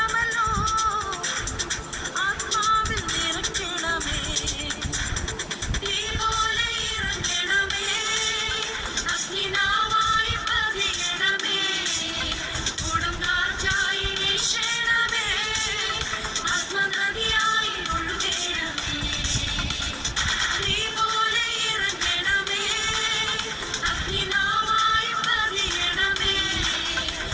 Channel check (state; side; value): identical; both; correlation 1.00